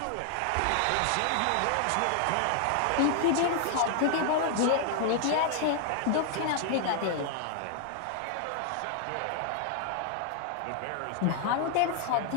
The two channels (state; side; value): different; both; correlation 0.00